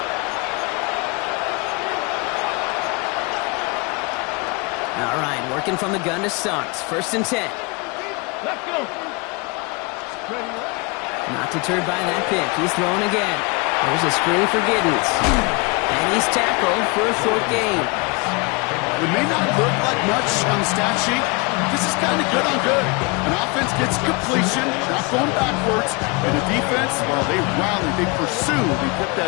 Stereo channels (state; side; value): quieter; right; 28.8 dB